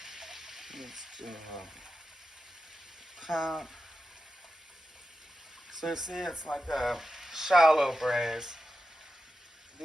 Let's do a cup. So you see, it's like a shallow braise.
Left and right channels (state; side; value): normal; both; correlation 0.91